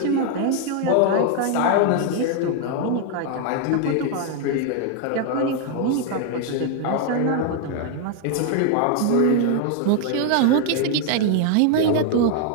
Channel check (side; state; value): both; different; correlation 0.00